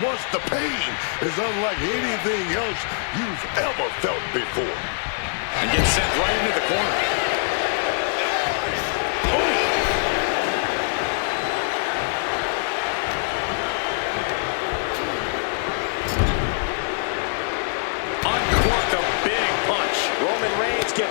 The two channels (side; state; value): right; silent; digital silence